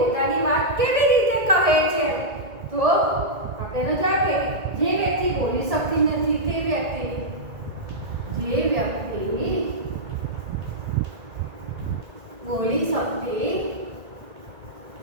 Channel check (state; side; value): late; left; 1.9 ms